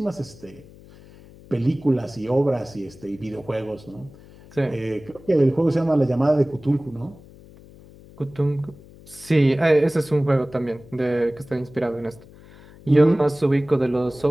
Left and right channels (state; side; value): noise; left; hum, 22 dB below the sound